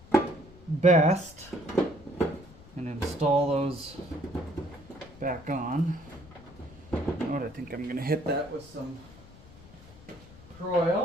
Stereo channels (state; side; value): noise; left; rumble, 21 dB below the sound